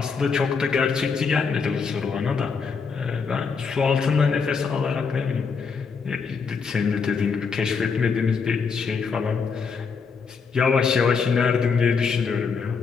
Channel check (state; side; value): quieter; right; 5.4 dB